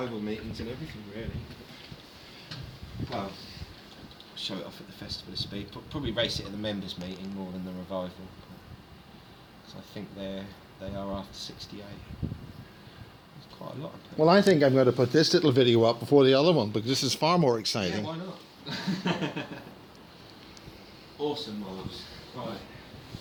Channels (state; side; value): identical; both; correlation 1.00